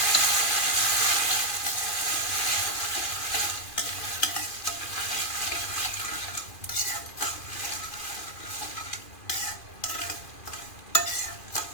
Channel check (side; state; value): right; late; 2.4 ms